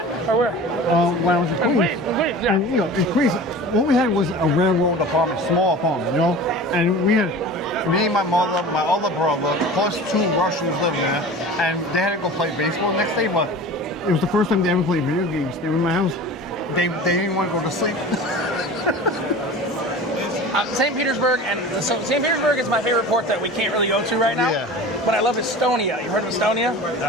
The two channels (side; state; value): both; normal; correlation 0.37